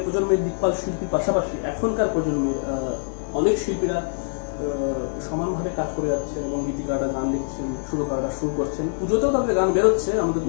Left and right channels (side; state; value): right; silent; 57 dB below the other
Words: প্রজন্মের দিকপাল শিল্পীর পাশাপাশি এখনকার প্রজন্মের অনেক শিল্পীরা সমানভাবে কাজ করে যাচ্ছে, এবং গীতিকাররা গান লিখছেন, সুরকাররা সুর করছেন, পুজোতেও তাদের গান বেরোচ্ছে। আমাদের